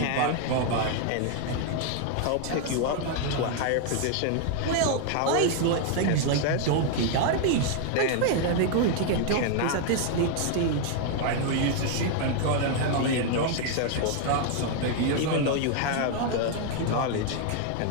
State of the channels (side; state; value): both; different; correlation 0.00